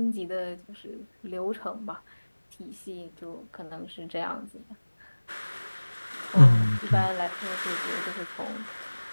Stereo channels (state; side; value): inverted; both; correlation -1.00